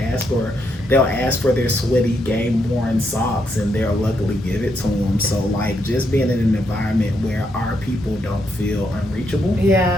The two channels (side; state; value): both; normal; correlation 0.78